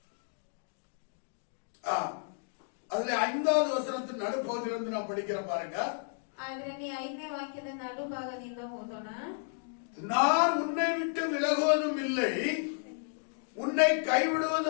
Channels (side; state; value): right; silent; digital silence